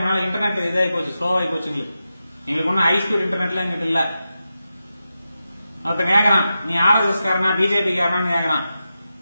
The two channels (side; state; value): both; inverted; correlation -0.91